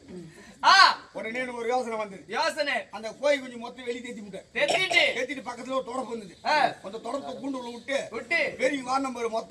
உடனே ஒரு யோசனை வந்தது. அந்த கோழி குஞ்சு மொத்தம் வெளியே தேத்திட்டு பக்கத்துல ஒரு தொடப்பு வந்தது. அந்த தொடப்பை கூண்டு உள்ள விட்டு வெளியே வா நம்பர்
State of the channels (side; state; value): both; identical; correlation 1.00